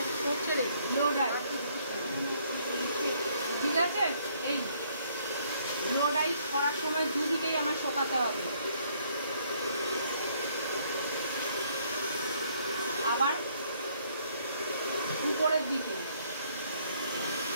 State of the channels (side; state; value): both; inverted; correlation -0.66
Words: করছে রে ব্লো ডাই, ঠিক আছে? এই ব্লো ডাই করার সময় দুদিকেই আমার শোকাতে হবে। আবার উপরের দিকে,